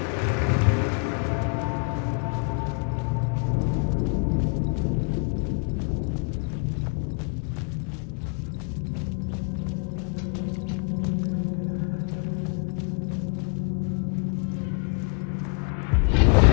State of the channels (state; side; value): quieter; right; 37.7 dB